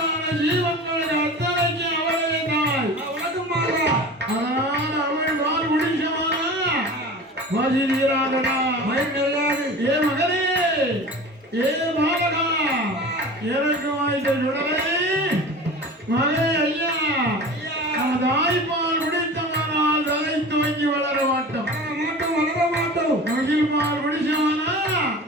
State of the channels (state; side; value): normal; both; correlation 0.36